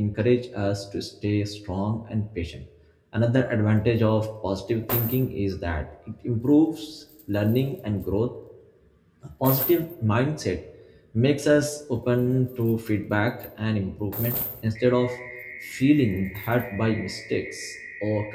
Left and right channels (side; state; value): both; identical; correlation 1.00